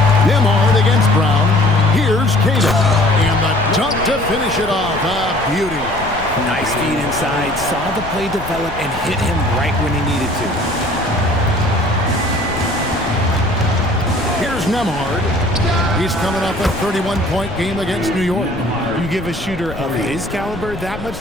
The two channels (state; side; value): noise; left; rumble, 12 dB below the sound